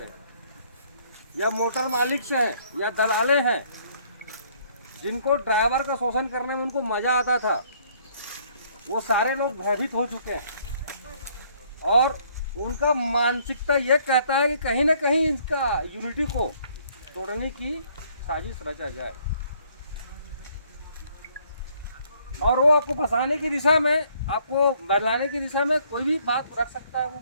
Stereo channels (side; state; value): both; inverted; correlation -0.63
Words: हैं, या मोटर मालिक से हैं या दलाले हैं, जिनको ड्राइवर का शोषण करने में उनको मजा आता था, वो सारे लोग भयभीत हो चुके हैं और उनका मानसिकता ये कहता है कि कहीं ना कहीं इसका यूनिटी को तोड़ने की साजिश रचा जाए और वो आपको फंसाने की दिशा में, आपको बदलाने की दिशा में कोई भी बात रख सकता है, वो